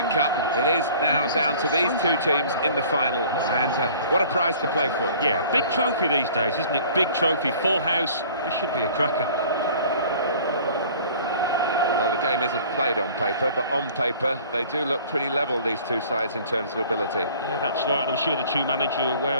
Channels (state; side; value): inverted; both; correlation -0.49